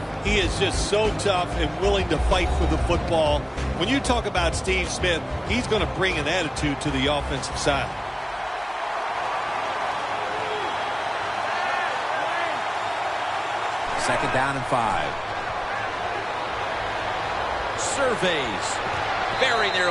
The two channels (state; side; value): identical; both; correlation 1.00